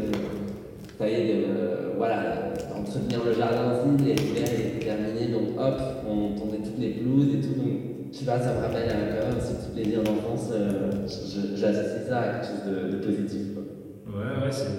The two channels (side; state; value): both; identical; correlation 1.00